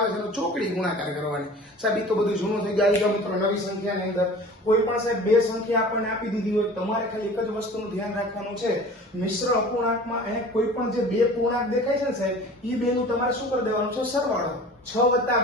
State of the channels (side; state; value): both; normal; correlation 0.42